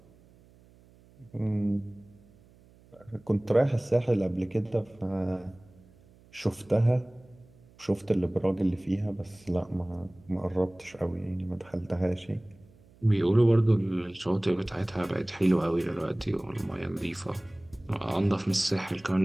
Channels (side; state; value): right; noise; hum, 27 dB below the sound